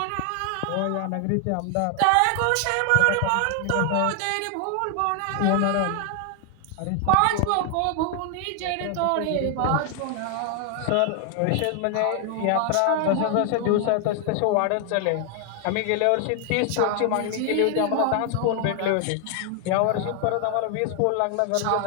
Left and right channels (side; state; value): both; different; correlation 0.00